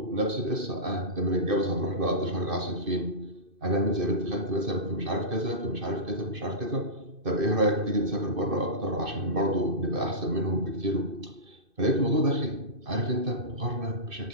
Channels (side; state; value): left; late; 2.5 ms